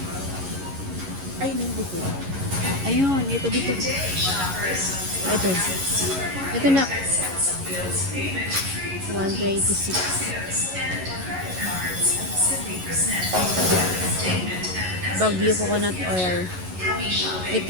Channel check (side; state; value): left; late; 11 ms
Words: Ay, nandito. Ayun, ito dito. Ito. Ito na. 126. Baguio coconut oil.